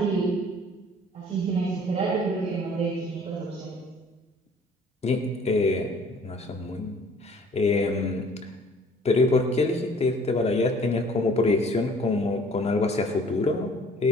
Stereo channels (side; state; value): both; normal; correlation 0.54